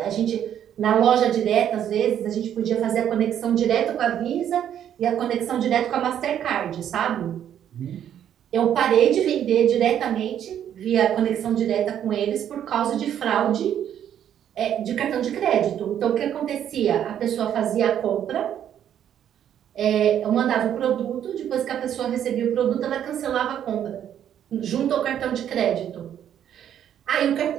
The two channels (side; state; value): left; quieter; 9.9 dB